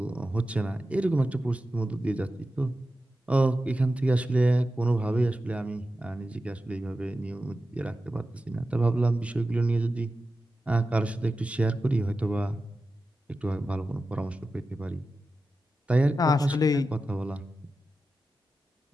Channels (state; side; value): normal; both; correlation 0.92